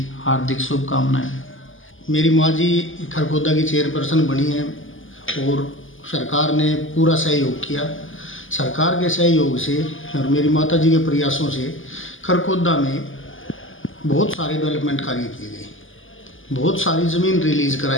हार्दिक शुभकामनाएं। मेरी माँ जी खरखौदा की चेयरपर्सन बनी हैं और सरकार ने पूरा सहयोग किया। सरकार के सहयोग से और मेरी माता जी के प्रयासों से खरखौदा में बहुत सारे डेवलपमेंट कार्य किए गए, बहुत सारी ज़मीन रिलीज़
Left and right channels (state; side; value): late; right; 0.58 ms